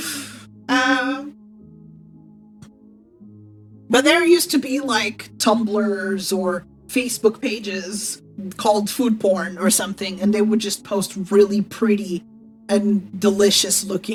But there used to be like Tumblrs or Facebook pages called food porn or something, and they would just post really pretty and delicious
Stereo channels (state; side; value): identical; both; correlation 1.00